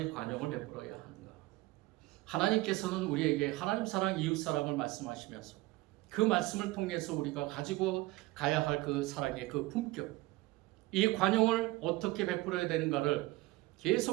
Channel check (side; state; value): left; quieter; 19.9 dB